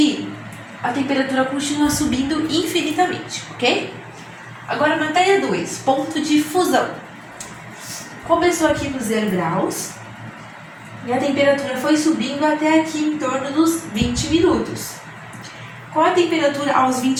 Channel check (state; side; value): identical; both; correlation 1.00